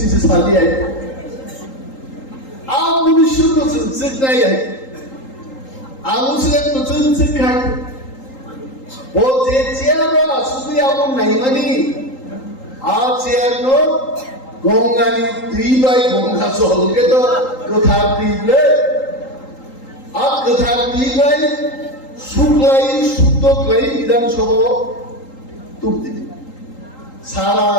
সালি আই আর 1900 জিত নাই আই আলুসের নতুন শিক্ষা ও যে চেয়ার শুধু এমন নাই মানে আর চেয়ার নো গঙ্গানি 3 গঙ্গা চলকে তো কথা দিলে আর কথা দিলে শুক্লাই শুদ্ধ ক্লাই বিধানসভা তুম দিলে সারা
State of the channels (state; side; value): late; right; 3.8 ms